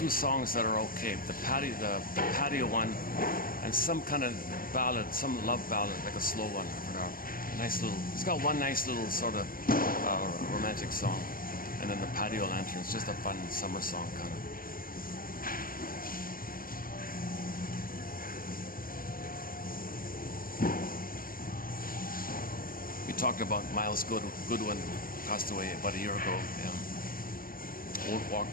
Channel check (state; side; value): late; right; 0.41 ms